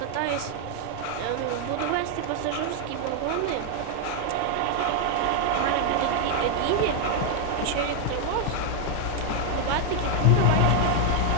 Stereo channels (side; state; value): both; different; correlation 0.00